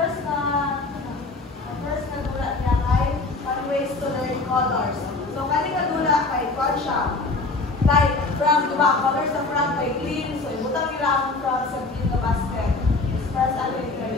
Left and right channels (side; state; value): right; quieter; 3.5 dB